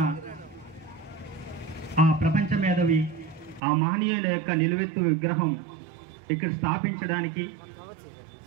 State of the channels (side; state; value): left; drops out; at 3.6 s